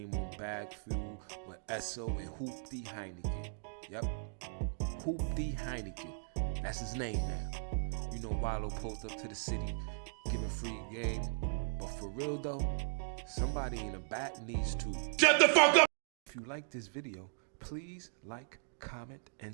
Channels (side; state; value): left; silent; digital silence